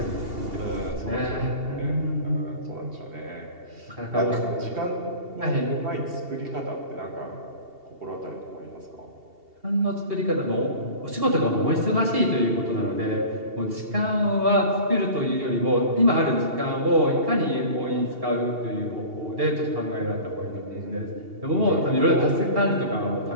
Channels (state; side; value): late; left; 2.8 ms